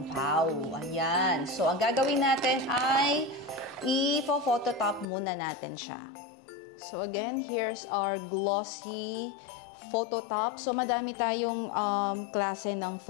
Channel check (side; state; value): right; drops out; at 5.1 s